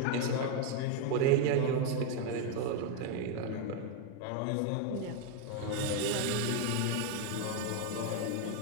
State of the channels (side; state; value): both; different; correlation 0.01